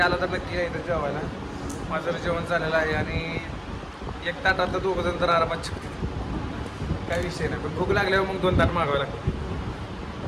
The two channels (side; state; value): both; identical; correlation 1.00